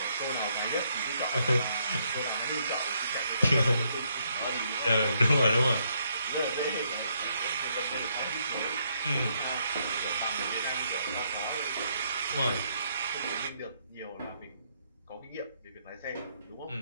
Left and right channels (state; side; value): inverted; both; correlation -0.73